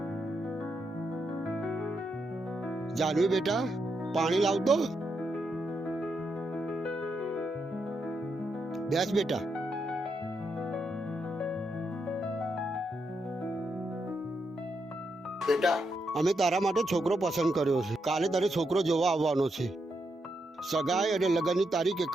જાનવી બેટા, પાણી લાવતો. બેસ બેટા. બેટા, અમે તારા માટે છોકરો પસંદ કર્યો છે. કાલે તારે છોકરો જોવા આવવાનો છે. સગાઈ અને લગ્નની તારીખ એક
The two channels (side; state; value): both; normal; correlation 0.82